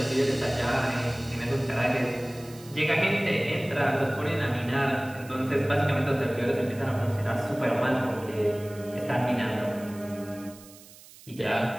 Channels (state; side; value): noise; right; hiss, 21 dB below the sound